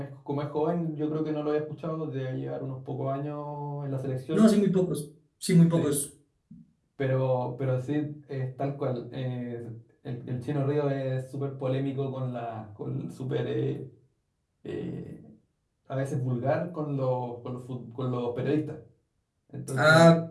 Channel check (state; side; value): identical; both; correlation 1.00